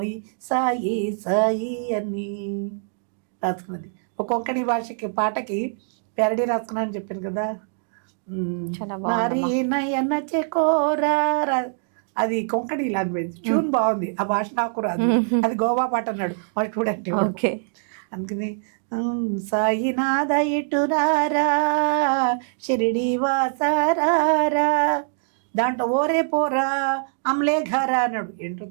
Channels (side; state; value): left; silent; digital silence